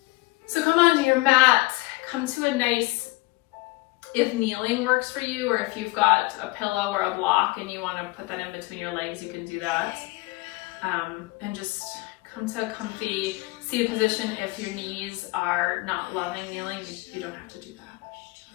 So come onto your mat, come to a nice, if kneeling works for you, or if you've got a pillow or a block and you want to put that in between your legs, you can do that. And just come to a comfy seated position. If your knees are not loving kneeling, you don't have to do that.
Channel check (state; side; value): quieter; right; 23.1 dB